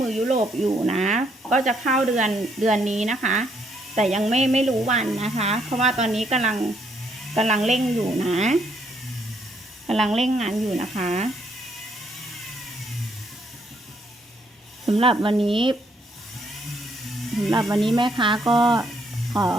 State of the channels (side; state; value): both; normal; correlation 0.71